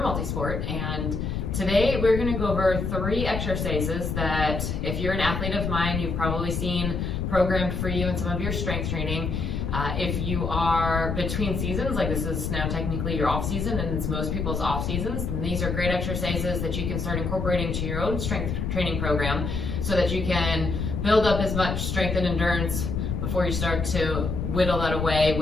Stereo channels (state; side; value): noise; left; rumble, 2 dB below the sound